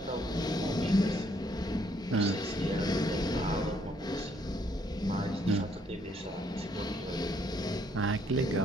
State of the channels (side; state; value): both; normal; correlation 0.69